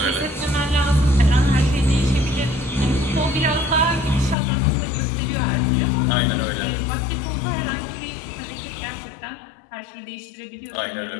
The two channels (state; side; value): drops out; right; at 4.4 s